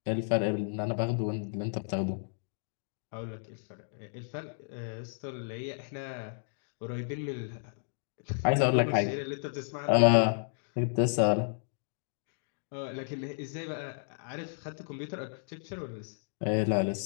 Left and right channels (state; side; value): silent; right; digital silence